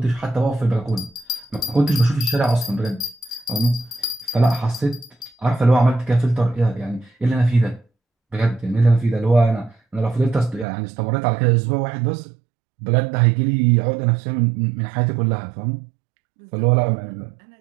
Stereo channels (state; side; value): drops out; left; at 10.7 s